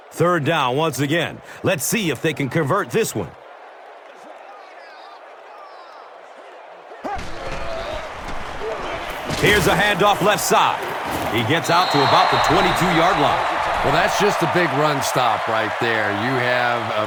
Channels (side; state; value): both; identical; correlation 1.00